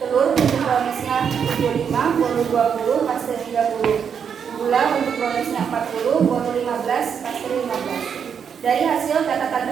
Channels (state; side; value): quieter; left; 7.3 dB